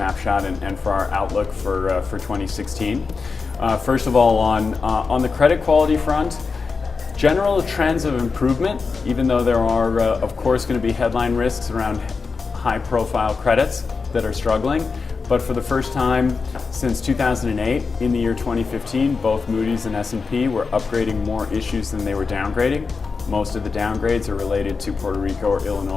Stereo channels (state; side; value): quieter; right; 4.7 dB